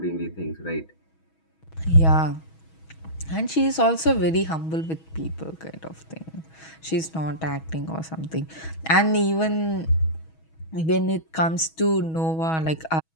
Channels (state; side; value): late; right; 6.2 ms